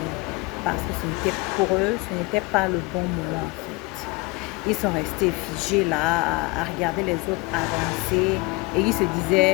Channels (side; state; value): right; quieter; 25.2 dB